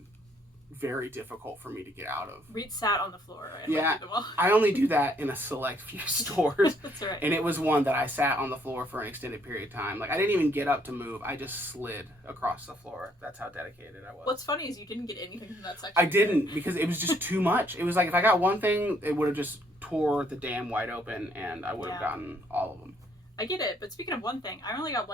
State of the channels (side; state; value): both; normal; correlation 0.67